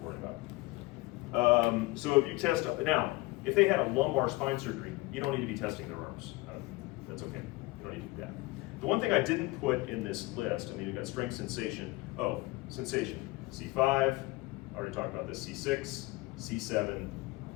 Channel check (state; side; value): quieter; right; 21.5 dB